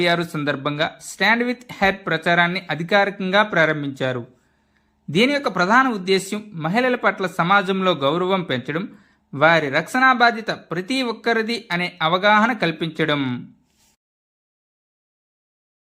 సందర్భంగా స్టాండ్ విత్ హెర్ ప్రచారాన్ని అధికారికంగా ప్రారంభించారు. దీని యొక్క ప్రధాన ఉద్దేశ్యం మహిళల పట్ల సమాజంలో గౌరవం పెంచడం, వారి రక్షణ బాధ్యత ప్రతి ఒక్కరిది అనే అవగాహన కల్పించడం.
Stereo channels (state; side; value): identical; both; correlation 1.00